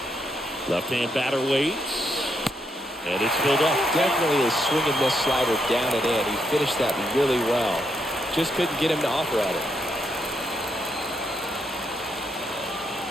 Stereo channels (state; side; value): normal; both; correlation 0.79